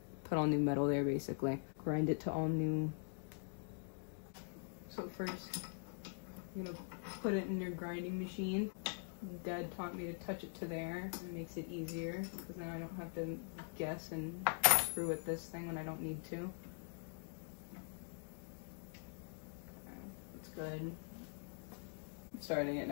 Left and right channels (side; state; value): right; silent; digital silence